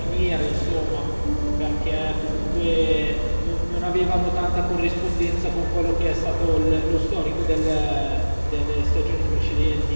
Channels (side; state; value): both; inverted; correlation -1.00